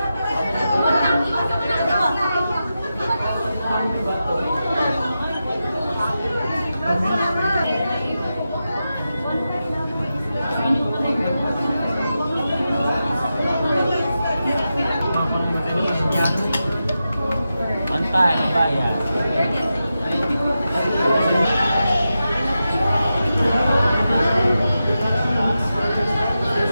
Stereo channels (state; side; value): inverted; both; correlation -0.90